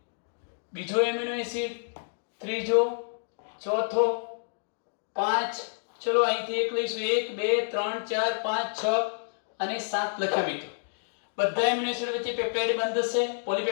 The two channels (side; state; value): right; silent; digital silence